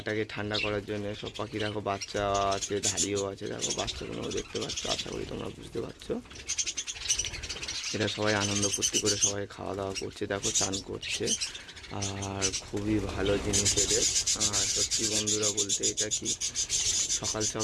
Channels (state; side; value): identical; both; correlation 1.00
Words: ঠান্ডা করার জন্য। সব পাখি দেখো, বাচ্চা আছে, ধাড়িও আছে, দেখো বাচ্চাগুলো দেখতে পাচ্ছ, আশা করি তোমরা বুঝতে পারছো। এরা সবাই আনন্দ ফুর্তি করে সবাই খাওয়া দাওয়া করছে, দেখো চান করছে, আর খুবই ভালো জিনিস এদের। আর সত্যি বন্ধুরা বলতে, এটা কি সকাল